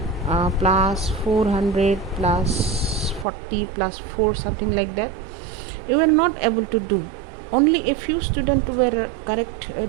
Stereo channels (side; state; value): left; drops out; at 3.2 s